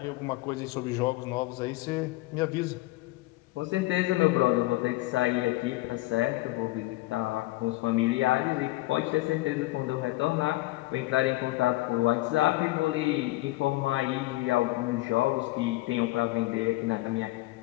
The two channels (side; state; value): right; quieter; 19.5 dB